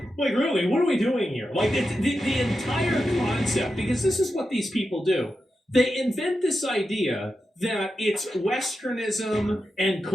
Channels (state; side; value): normal; both; correlation 0.89